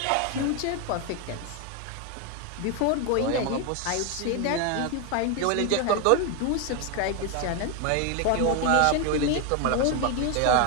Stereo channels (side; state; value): both; different; correlation 0.01